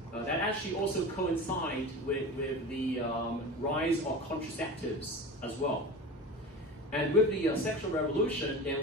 That actually also coincided with the rise of contraceptives as well. And with the sexual revolution,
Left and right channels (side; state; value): both; normal; correlation 0.31